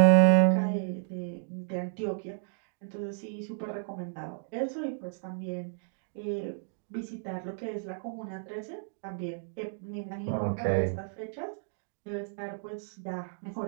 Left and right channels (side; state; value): left; silent; digital silence